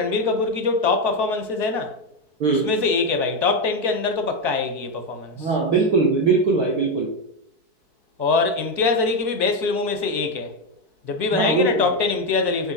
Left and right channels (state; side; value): late; left; 4.6 ms